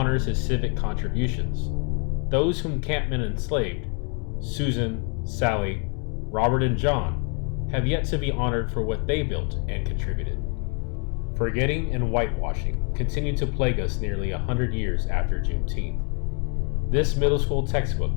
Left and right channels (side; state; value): right; quieter; 38.8 dB